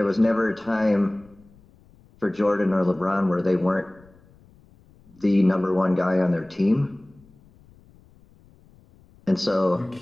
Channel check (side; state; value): left; noise; rumble, 28 dB below the sound